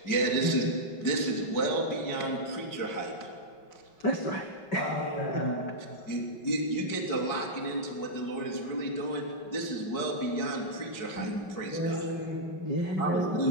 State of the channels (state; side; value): late; right; 5.3 ms